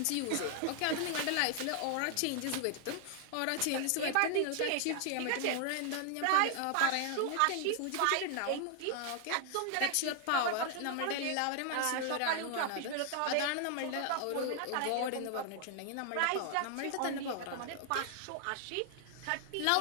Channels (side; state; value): both; different; correlation 0.00